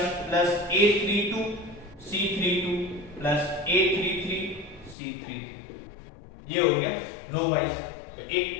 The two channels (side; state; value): right; drops out; at 5.0 s